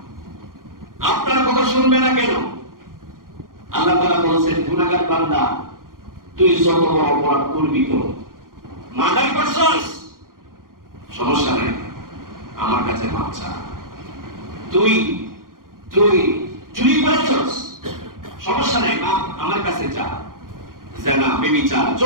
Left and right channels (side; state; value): left; late; 0.91 ms